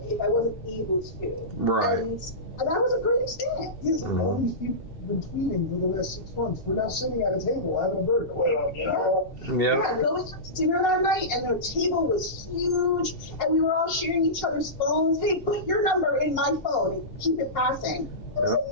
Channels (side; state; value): right; late; 2.7 ms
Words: if I wasn't able to. Right. And that was a great experience. Yes, all these people have been tweeting for the last 6 months. We're now sitting at a table having a burger. You know? Yeah, going to dinner that night, and the table was huge, and we were all sharing each other's phones. Hey, put your number in my phone and keep it passing. It